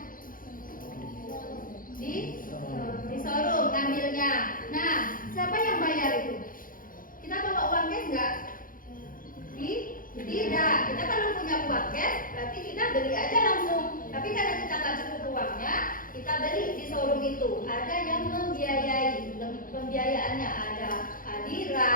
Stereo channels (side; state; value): right; late; 0.40 ms